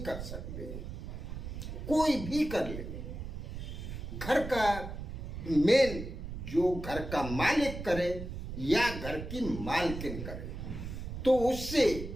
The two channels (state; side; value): noise; right; rumble, 7 dB below the sound